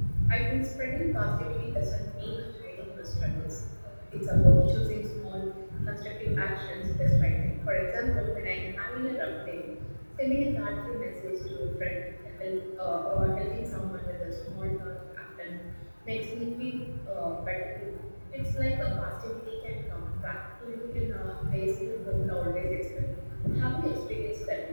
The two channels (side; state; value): both; inverted; correlation -1.00